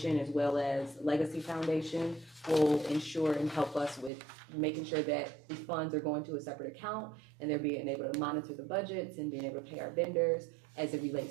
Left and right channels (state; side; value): drops out; left; at 4.1 s